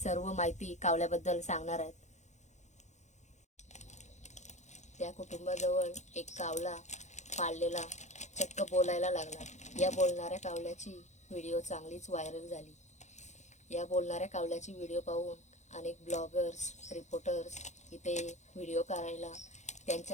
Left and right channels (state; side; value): late; right; 0.34 ms